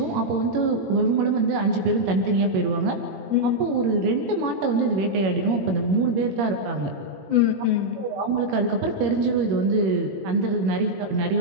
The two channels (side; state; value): left; late; 21 ms